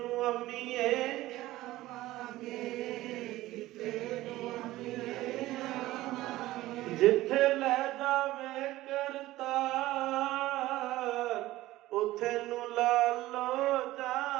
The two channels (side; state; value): left; quieter; 16.8 dB